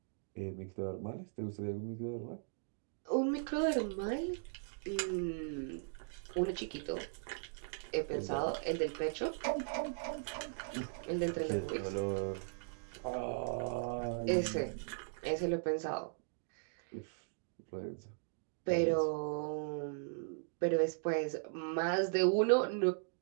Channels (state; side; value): silent; left; digital silence